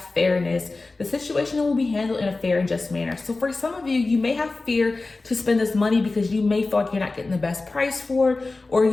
fairness. The situation will be handled in a fair and just manner. So for some of you, you may have fear to spend this money because you may feel like you're not getting the best price for it, or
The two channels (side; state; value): right; quieter; 3.5 dB